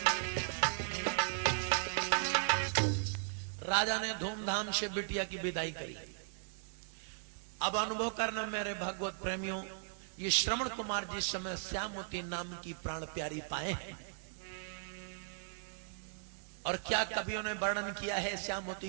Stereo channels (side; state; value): left; silent; digital silence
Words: राजा ने धूमधाम से बिटिया की विदाई करी। अब अनुभव करना मेरे भगवत प्रेमियों, ये श्रवण कुमार जिस समय श्यामवती नाम की प्राण प्यारी पाए हैं, और क्या कवियों ने वर्णन किया है श्यामवती